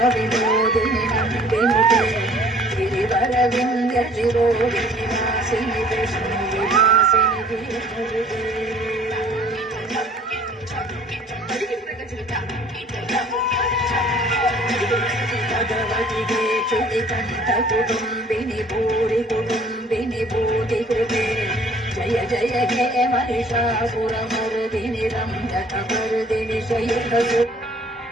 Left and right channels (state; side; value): normal; both; correlation 0.54